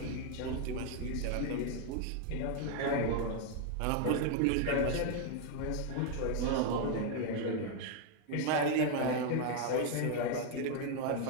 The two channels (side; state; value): both; different; correlation 0.01